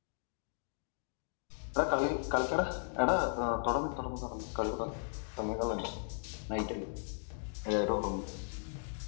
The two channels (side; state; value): right; silent; digital silence